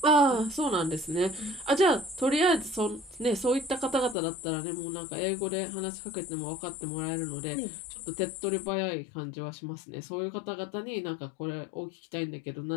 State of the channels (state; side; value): drops out; right; at 4.2 s